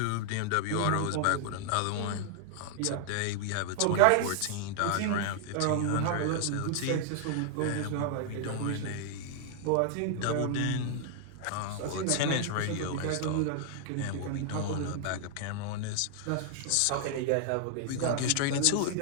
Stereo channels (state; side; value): different; both; correlation 0.00